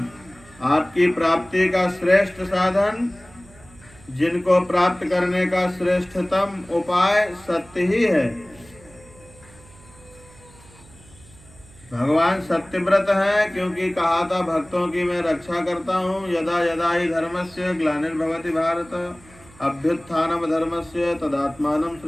आपकी प्राप्ति का श्रेष्ठ साधन, जिनको प्राप्त करने का श्रेष्ठतम उपाय सत्य ही है। भगवान सत्यव्रत है क्योंकि कहा था भक्तों की मैं रक्षा करता हूँ। यदा यदा ही धर्मस्य ग्लानिर्भवति भारत अभ्युत्थानम धर्मस्य तदात्मानं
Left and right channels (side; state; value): right; noise; hum, 24 dB below the sound